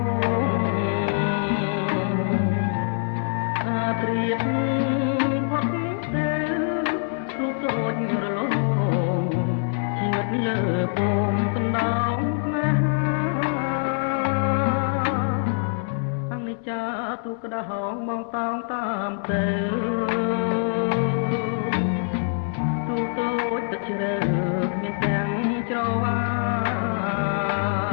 អាត្រៀបផុតទៅរូបតូចរលងជីវិតលើពងកណ្ដោងណាចាទូក្តៅហងមកតោងតាមទៅទូតូចទឹកជ្រៅមានទាំងច្រវា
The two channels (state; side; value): silent; right; digital silence